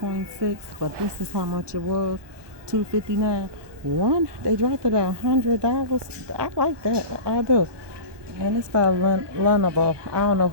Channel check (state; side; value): late; left; 1.2 ms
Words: but this is how much it was, $259. They dropped it at $100. I like that. I do. And it's by Lenovo. I don't know